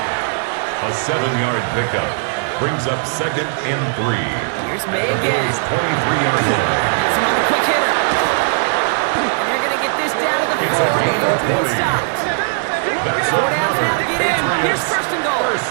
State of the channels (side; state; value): left; silent; digital silence